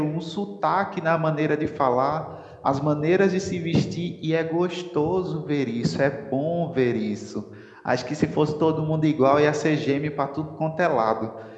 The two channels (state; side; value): identical; both; correlation 1.00